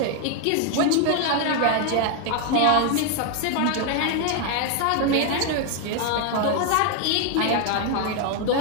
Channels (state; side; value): different; both; correlation 0.01